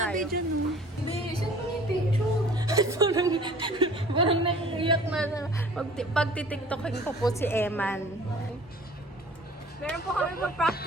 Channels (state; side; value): normal; both; correlation 0.49